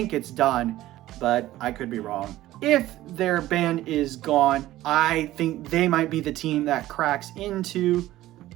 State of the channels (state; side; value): quieter; left; 15.4 dB